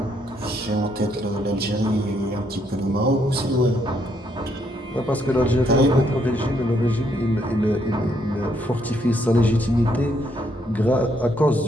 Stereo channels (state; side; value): normal; both; correlation 0.73